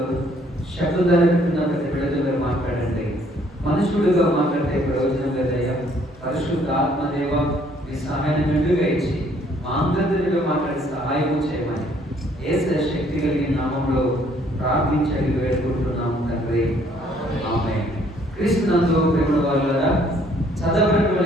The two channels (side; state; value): both; normal; correlation 0.63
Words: శబ్దధారకున్న ప్రతి బిడ్డతో మీరు మాట్లాడండి. మనుషుడుగా మాట్లాడితే ప్రయోజనం లేదయ్యా. పరిశుద్ధ ఆత్మదేవ మీ సహాయాన్ని మెండుగా ఇచ్చి మా అందరితో మాట్లాడి సహాయం చేయమని యేసు శక్తి కలిగిన నామంలో ప్రార్థించి వేడుకుంటున్నాము తండ్రి, ఆమేన్. క్రీస్తునందు ప్రేమ వాళ్ళరా, చదవబడిన